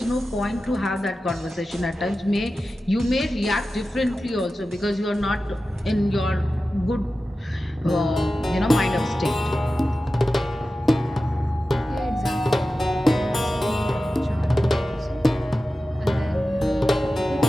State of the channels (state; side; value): normal; both; correlation 0.94